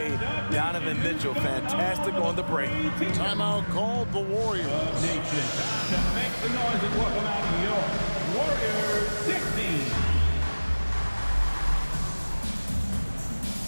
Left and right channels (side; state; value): both; inverted; correlation -1.00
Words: Donovan Mitchell, fantastic on the break. Timeout called the Warriors. Nation, make some noise and welcome out your Warriors 16.